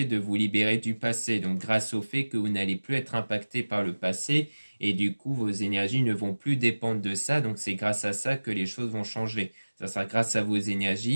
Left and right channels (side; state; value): both; inverted; correlation -1.00